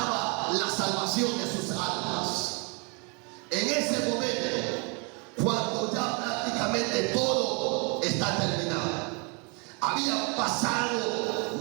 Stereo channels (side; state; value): left; quieter; 33.5 dB